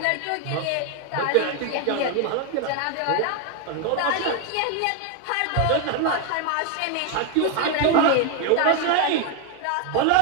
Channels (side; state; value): both; different; correlation 0.01